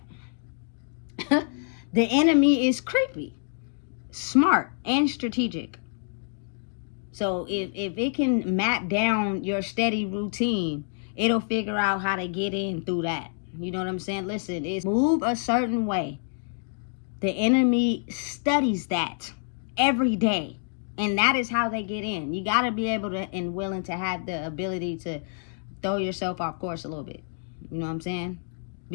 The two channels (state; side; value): silent; right; 60 dB below the other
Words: the enemy is creepy, smart, and strategic. So if it can map down your steady routine, it'll figure out how to get in through that. You know what I'm saying? Listen, it's move a certain way. The enemy studies that every day. And that is how they get in. You got to be able to and willing to have the ability to throw yourself off course a little bit. You know what I'm saying?